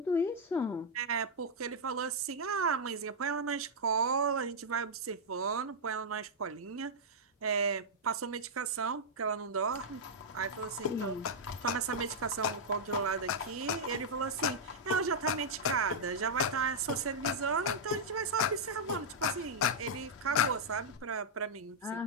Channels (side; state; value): both; normal; correlation -0.05